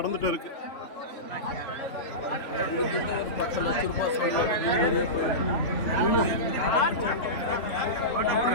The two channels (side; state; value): right; late; 3.4 ms